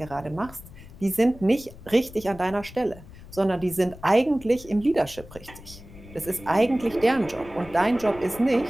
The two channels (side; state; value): left; noise; rumble, 18 dB below the sound